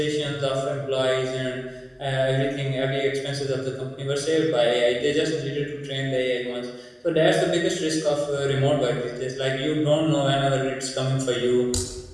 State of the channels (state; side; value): identical; both; correlation 1.00